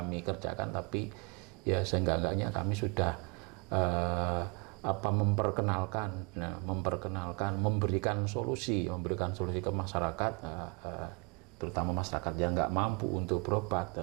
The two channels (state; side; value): quieter; left; 30.7 dB